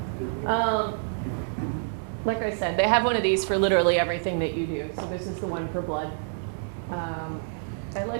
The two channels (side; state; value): left; silent; digital silence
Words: Like I said, they have one of these for literally everything that you do. So this is the one for blood. I